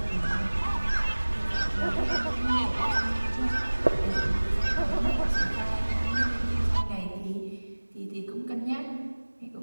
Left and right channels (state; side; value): inverted; both; correlation -1.00